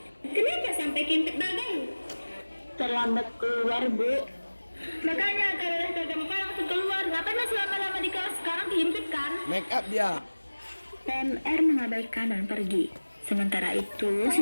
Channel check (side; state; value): both; inverted; correlation -1.00